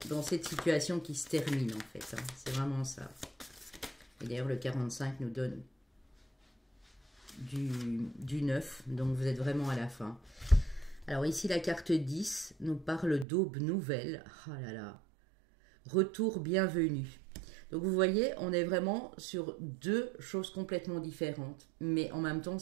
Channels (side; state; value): left; drops out; at 13.2 s